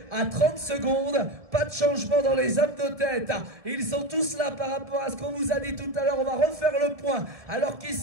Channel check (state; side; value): late; left; 1.5 ms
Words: à 30 secondes. Pas de changement dans les hommes de tête. Ils sont tous là par rapport à ce qu'on vous a dit tout à l'heure. On va refaire le point. Alors